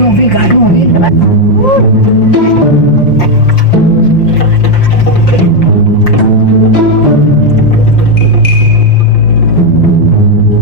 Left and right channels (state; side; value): late; right; 5.7 ms